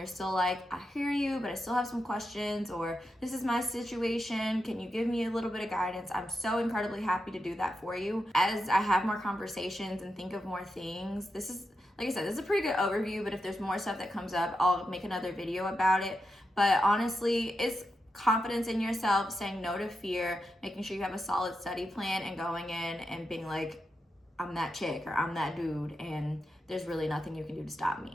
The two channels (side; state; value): both; normal; correlation 0.87